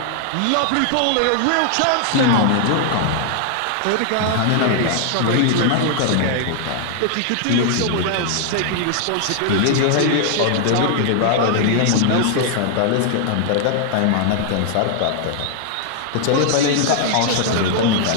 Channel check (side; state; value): both; different; correlation 0.00